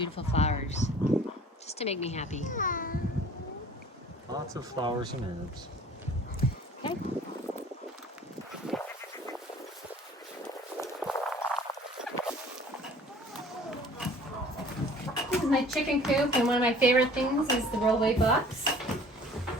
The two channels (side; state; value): both; normal; correlation 0.49